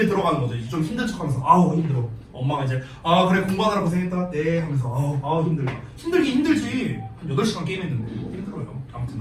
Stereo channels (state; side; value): identical; both; correlation 1.00